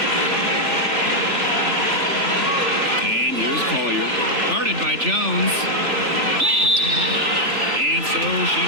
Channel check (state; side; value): late; left; 3.4 ms